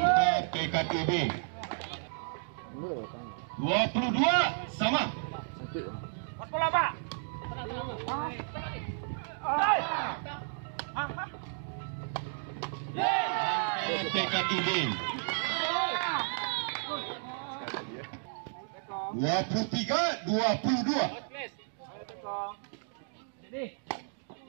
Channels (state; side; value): silent; left; digital silence